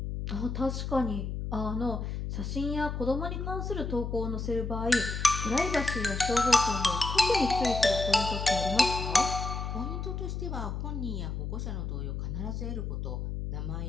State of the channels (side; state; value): left; noise; hum, 4 dB below the sound